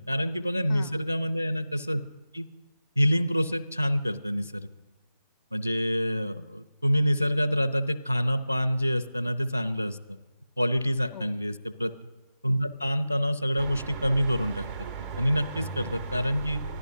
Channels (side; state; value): both; inverted; correlation -0.95